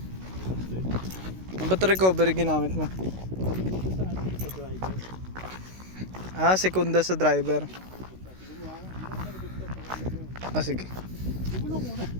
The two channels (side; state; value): left; late; 16 ms